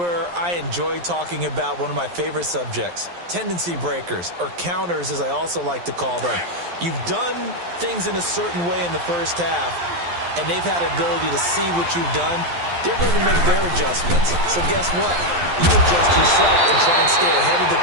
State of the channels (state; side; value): late; left; 11 ms